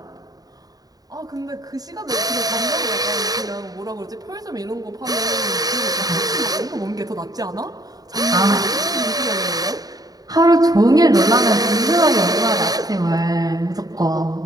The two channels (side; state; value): left; late; 0.18 ms